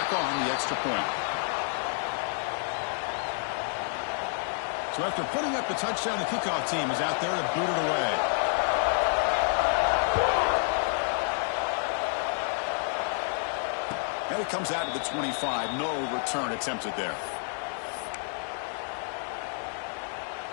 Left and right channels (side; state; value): right; silent; 58 dB below the other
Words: on the extra point. So after putting up the touchdown, the kickoff team is out there to boot it away. And it comes out to the 25. No return attempted there.